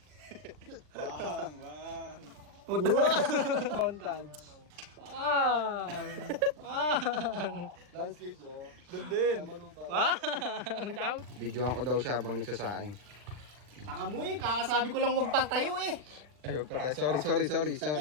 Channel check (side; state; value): left; late; 40 ms